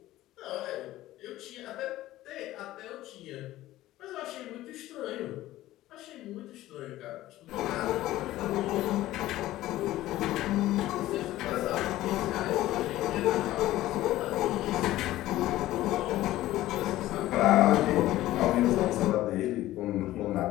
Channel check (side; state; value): right; quieter; 15.5 dB